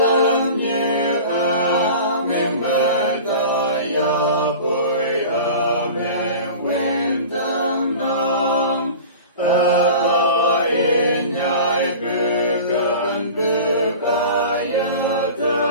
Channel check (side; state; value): both; inverted; correlation -0.38